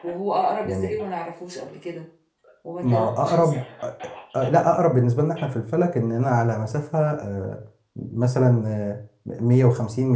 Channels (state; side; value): identical; both; correlation 1.00